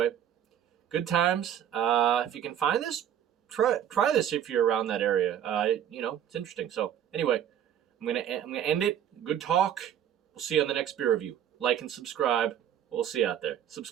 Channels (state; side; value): quieter; left; 9.9 dB